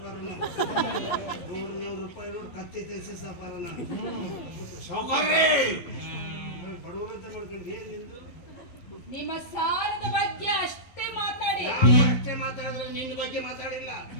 $100 ನೋಡಿ ಕತ್ತಿ ತೆಗೆಸಿ ಸಾವುಕಾರ. ನಾನು ಸಾವುಕಾರ್ರೆ ಬಡವರು ಅಂತ ಮಾಡ್ಕೊಂಡು ಏನ್ ನಿಂದು? ನಿಮ್ಮ ಸಾಲದ ಬಗ್ಗೆ ಅಷ್ಟೇ ಮಾತಾಡಿ. ಅಷ್ಟೇ ಮಾತಾಡಿದ್ರೆ ನಿನ್ನ ಬಗ್ಗೆ ಮಾತಾಡಿಲ್ಲ.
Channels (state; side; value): late; right; 11 ms